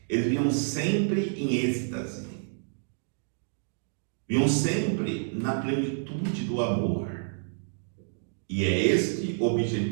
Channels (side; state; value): left; silent; digital silence